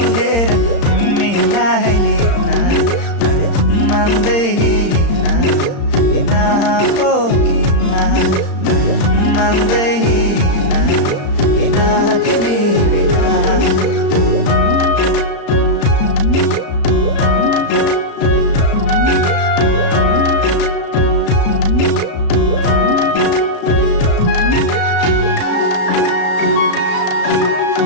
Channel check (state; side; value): late; right; 35 ms